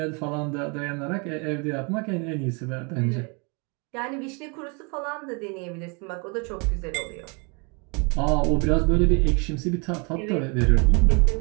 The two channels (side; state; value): left; quieter; 33.0 dB